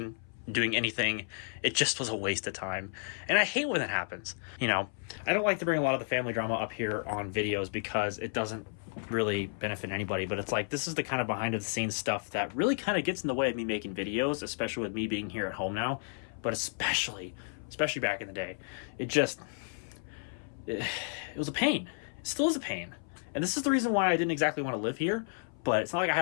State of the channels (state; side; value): silent; right; 56 dB below the other